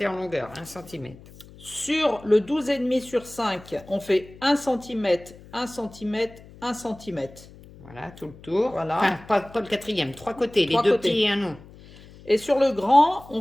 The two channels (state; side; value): noise; left; hum, 21 dB below the sound